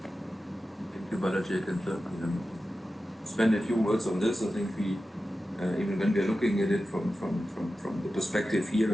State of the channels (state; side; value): normal; both; correlation 0.93